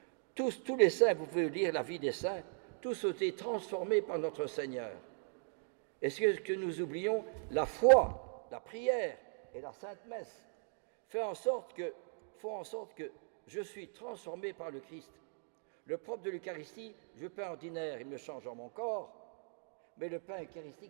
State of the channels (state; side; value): silent; left; digital silence